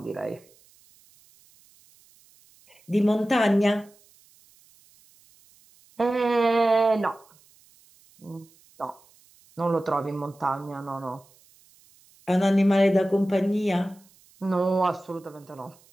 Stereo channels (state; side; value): noise; right; hiss, 30 dB below the sound